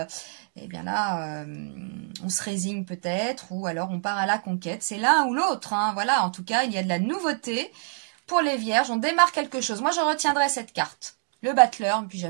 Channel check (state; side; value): silent; left; 58 dB below the other